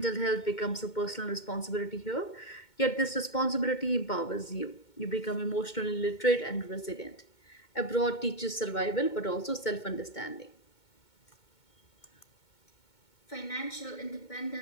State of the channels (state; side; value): late; right; 2.2 ms